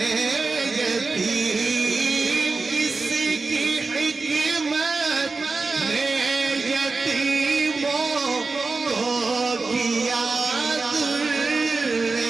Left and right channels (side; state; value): left; quieter; 3.9 dB